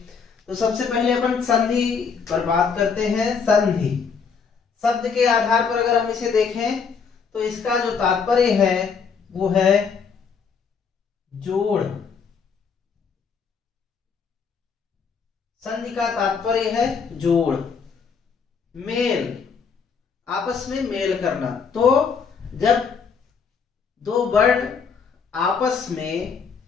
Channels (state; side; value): quieter; right; 5.9 dB